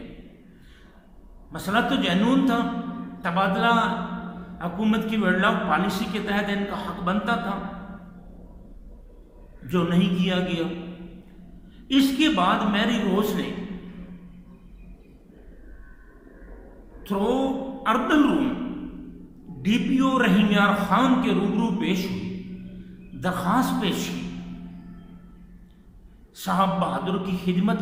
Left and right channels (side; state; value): both; identical; correlation 1.00